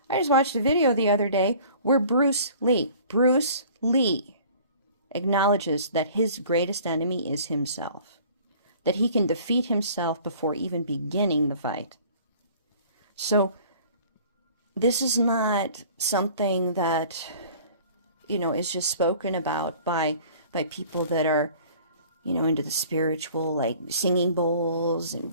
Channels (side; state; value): both; inverted; correlation -0.49